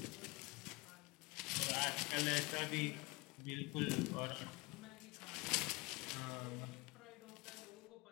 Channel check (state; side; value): quieter; right; 24.9 dB